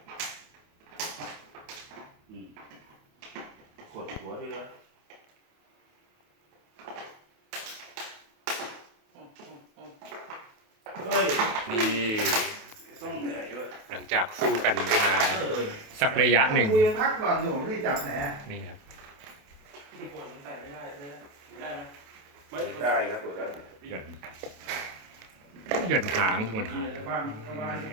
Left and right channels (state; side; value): late; left; 28 ms